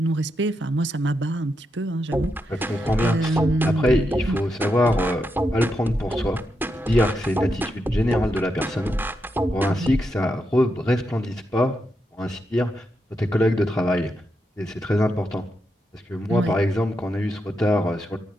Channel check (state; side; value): normal; both; correlation 0.84